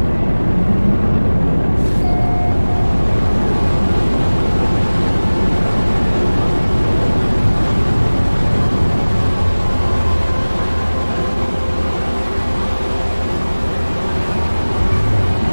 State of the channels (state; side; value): inverted; both; correlation -1.00